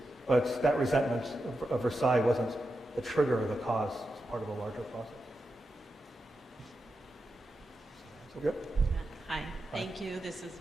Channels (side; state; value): both; normal; correlation 0.89